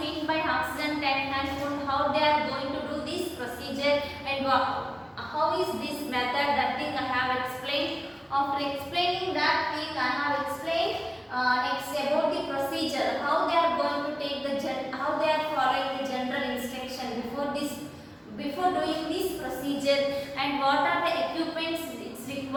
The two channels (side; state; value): both; identical; correlation 1.00